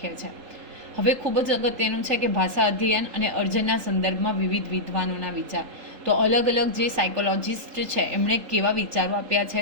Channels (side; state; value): left; late; 3.8 ms